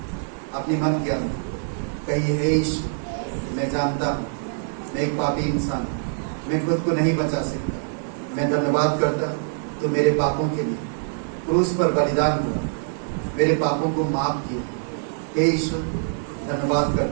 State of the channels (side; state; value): left; silent; digital silence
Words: अपने मन के अंदर कहिए, हे यीशु, मैं जानता हूँ मैं एक पापी इंसान हूँ, मैं खुद को नहीं बचा सकता, मैं धन्यवाद करता हूँ तो मेरे पापों के लिए क्रूस पर बलिदान हुआ, मेरे पापों को माफ किया। हे यीशु, धन्यवाद